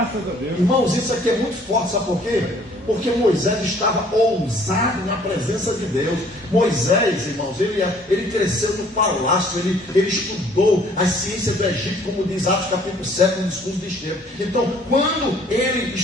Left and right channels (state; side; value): normal; both; correlation 0.58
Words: a Deus. Irmãos, isso aqui é muito forte, sabe por quê? Porque Moisés estava ousado na presença de Deus. Moisés, irmãos, ele cresceu no palácio, ele estudou as ciências do Egito, como diz Atos capítulo 7, no discurso de Estevão. Então, quando ele